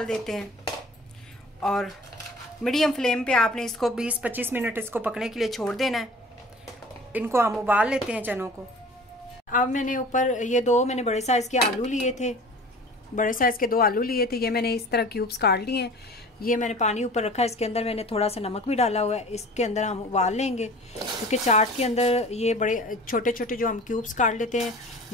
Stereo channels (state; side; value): normal; both; correlation 0.43